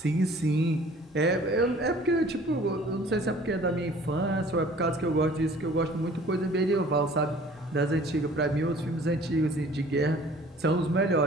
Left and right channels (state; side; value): normal; both; correlation 0.51